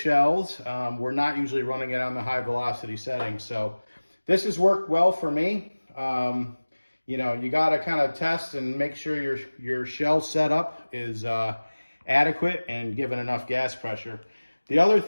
We're not usually running it on the high velocity setting. So this has worked well for me. You know, you got to kind of test and make sure your shell setup is adequate and given enough gas pressure. The other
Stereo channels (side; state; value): both; inverted; correlation -1.00